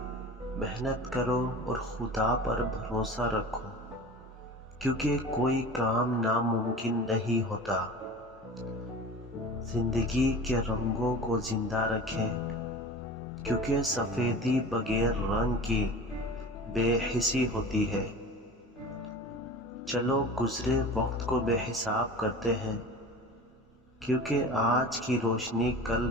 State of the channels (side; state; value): both; normal; correlation 0.36